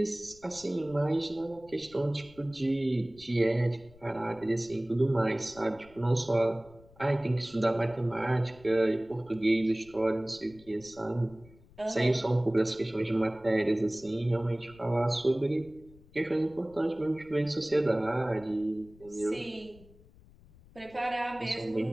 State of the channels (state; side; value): noise; left; rumble, 24 dB below the sound